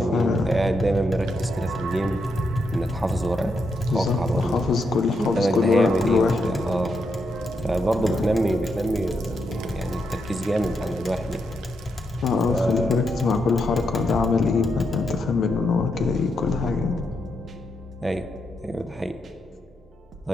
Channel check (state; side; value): normal; both; correlation 0.82